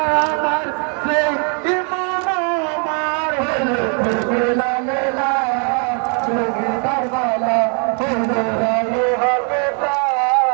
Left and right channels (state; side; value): quieter; left; 39.6 dB